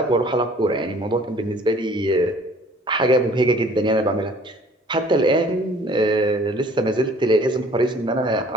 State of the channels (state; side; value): normal; both; correlation 0.54